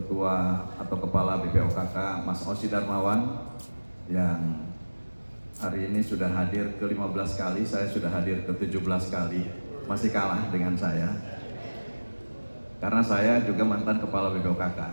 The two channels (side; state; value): both; inverted; correlation -1.00